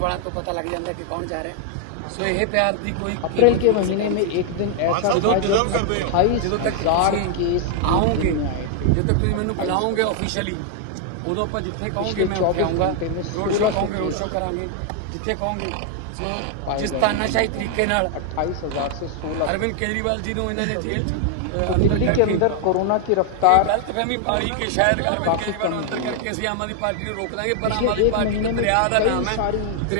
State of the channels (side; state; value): both; different; correlation 0.00